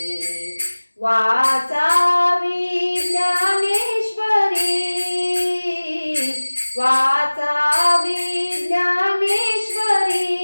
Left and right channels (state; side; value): inverted; both; correlation -1.00